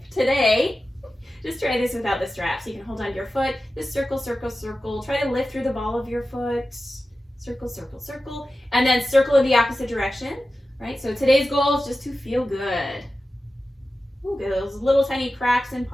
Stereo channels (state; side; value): normal; both; correlation 0.94